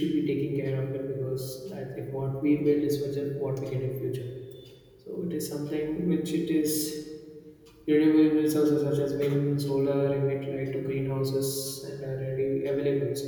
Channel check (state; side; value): identical; both; correlation 1.00